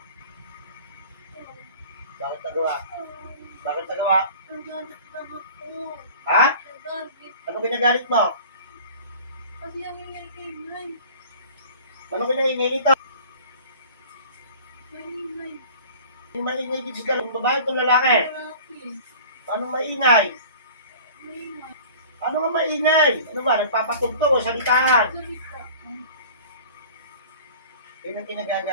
Bakit nagawa? Bakit nagawa? Nagalit lang ako. Ha? Nagalit. Ano pinagalit mo? Kasi ang ingay-ingay. Ano pinaingay nito? Maingay. Yung maingay dito sa galong babae itong lalaki. Lalaki. Paano maingay? Maingay. Ano nga maingay? Ano ba? Nagpapatugtog o salitaan? Salita. Yun ang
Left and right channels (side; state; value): both; inverted; correlation -0.43